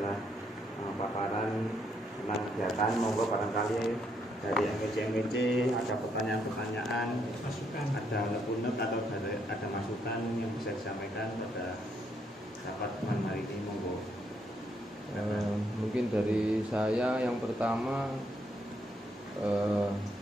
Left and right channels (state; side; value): normal; both; correlation 0.74